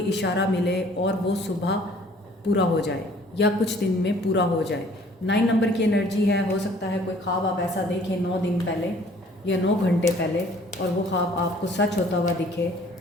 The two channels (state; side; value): normal; both; correlation 0.55